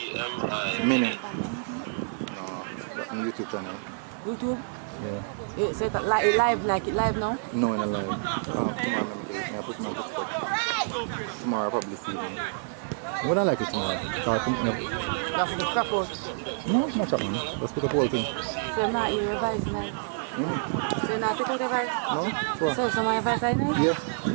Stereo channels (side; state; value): left; silent; 59 dB below the other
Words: Mini. No, that's on YouTube channel. YouTube? Yeah. You say that live, like it live now? No, in a live. Tomorrow I put my foot. Tomorrow I'll probably see them. Would I like it tomorrow? That's the crap out. No, not that man. Let's put the whole thing. So now you revise now? So now take out the advice? No? Sure. So my advice I know? Yeah.